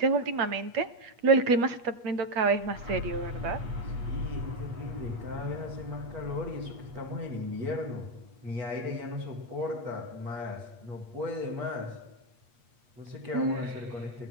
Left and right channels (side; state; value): left; late; 8.4 ms